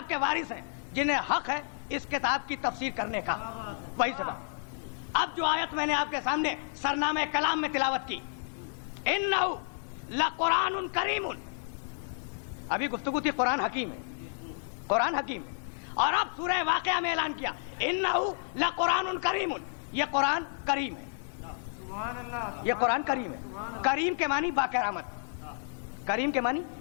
کے وارث ہیں، جنہیں حق ہے اس کتاب کی تفسیر کرنے کا، وہی صفت. اب جو آیت میں نے آپ کے سامنے سرنامہ کلام میں تلاوت کی، انہ لقرآن کریم، ابھی گفتگو تھی قرآن حکیم ہے، قرآن حکیم ہے. اور اب سورہ واقعہ میں اعلان کیا انہ لقرآن کریم، یہ قرآن کریم ہے. سبحان اللہ. یہ قرآن کریم ہے. کریم کے معنی با کرامت، کریم کے معنی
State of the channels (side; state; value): right; silent; digital silence